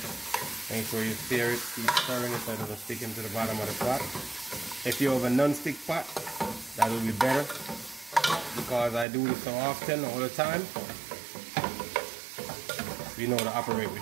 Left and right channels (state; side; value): drops out; left; at 9.1 s